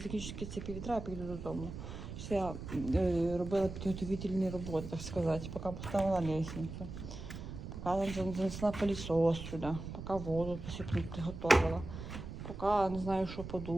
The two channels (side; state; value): right; noise; rumble, 9 dB below the sound